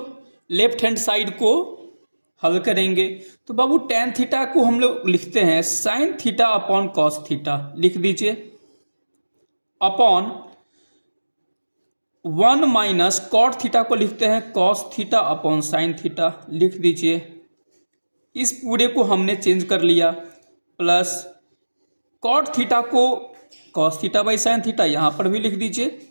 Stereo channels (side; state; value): both; inverted; correlation -1.00